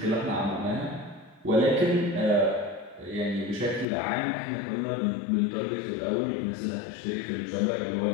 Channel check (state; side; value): drops out; right; at 3.9 s